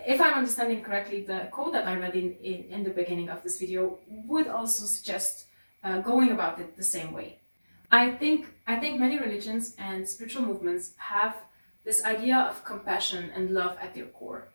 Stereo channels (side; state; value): both; inverted; correlation -1.00